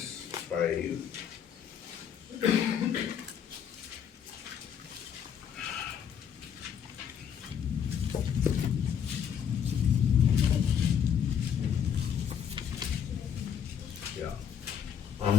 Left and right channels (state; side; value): quieter; right; 8.3 dB